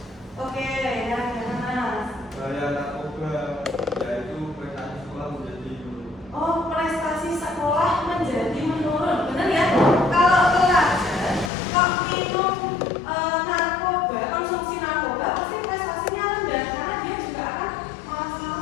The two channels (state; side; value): drops out; right; at 11.5 s